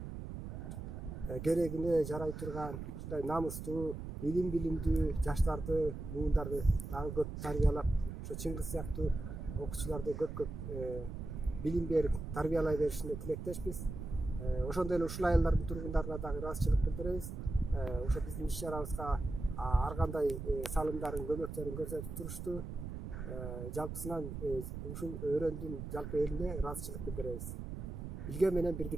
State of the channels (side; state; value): right; noise; rumble, 7 dB below the sound